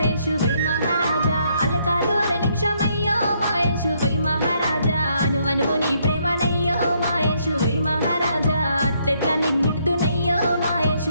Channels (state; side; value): inverted; both; correlation -0.72